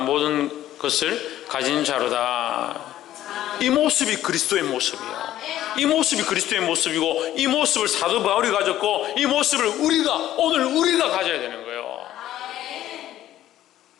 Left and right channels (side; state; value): right; quieter; 13.1 dB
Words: 것을 가진 자로다. 이 모습이 그리스도의 모습이에요. 이 모습이 그리스도의 모습이고 이 모습을 사도 바울이 가졌고 이 모습을 오늘 우리가 가져야 되는 거예요.